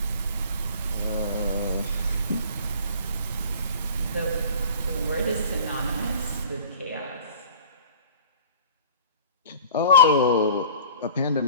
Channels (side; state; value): both; inverted; correlation -0.44